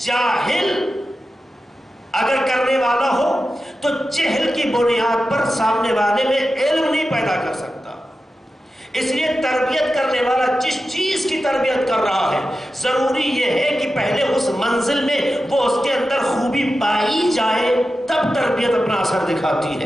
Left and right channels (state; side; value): normal; both; correlation 0.92